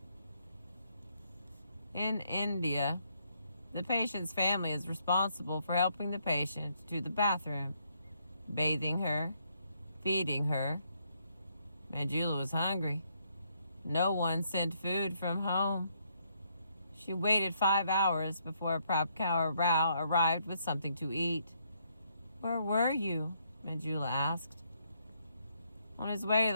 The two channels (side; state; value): both; inverted; correlation -0.73